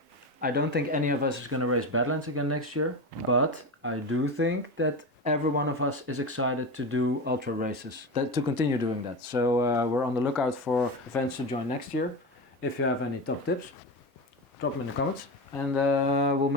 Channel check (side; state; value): both; normal; correlation 0.22